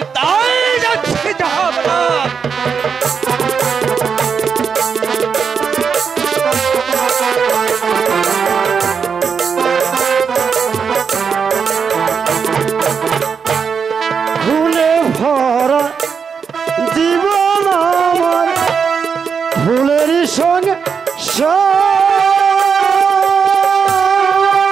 তাই যাচ্ছি, যাহা বলা। ভুলে ভরা জীবন আমার, ভুলেরই সঙ্গে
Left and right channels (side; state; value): left; quieter; 6.3 dB